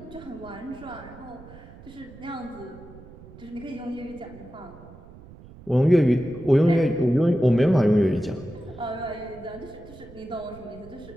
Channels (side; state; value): right; noise; rumble, 19 dB below the sound